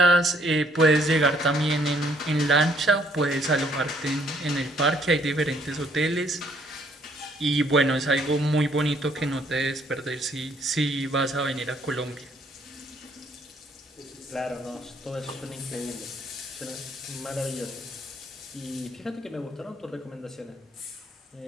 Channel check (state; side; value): normal; both; correlation 0.65